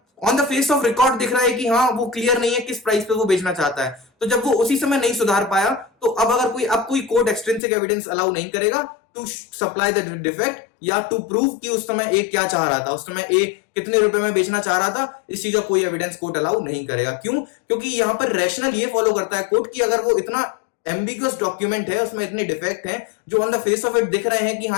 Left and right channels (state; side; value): drops out; right; at 7.6 s